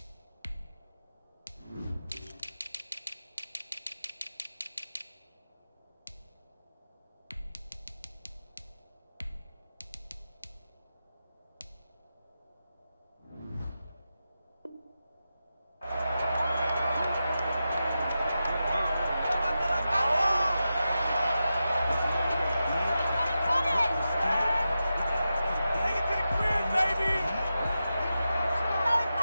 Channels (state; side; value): inverted; both; correlation -0.91